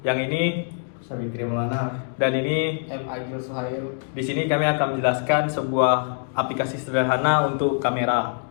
yang ini Sabitri Maulana. dan ini. M. Agil Suhail. Di sini kami akan menjelaskan sebuah aplikasi sederhana untuk kamera.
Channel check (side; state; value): right; silent; digital silence